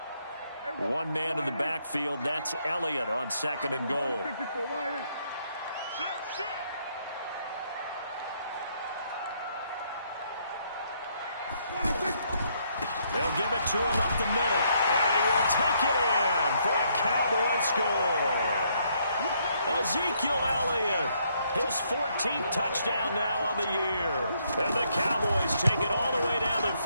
One man in the backfield, that's Elliott on second and goal. They'll give it to him up the middle, and he will take it in for a Cowboy score. Ezekiel Elliott, his 14th touchdown now on the year. And the Cowboys take it all the way down the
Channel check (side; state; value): both; inverted; correlation -0.72